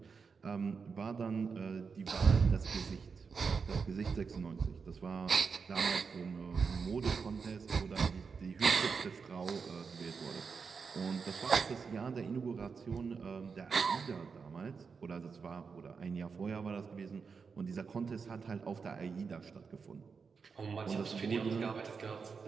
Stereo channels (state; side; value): quieter; left; 5.4 dB